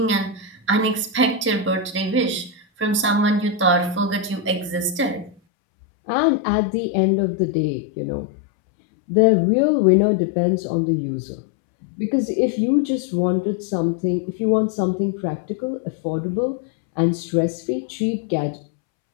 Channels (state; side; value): drops out; right; at 5.4 s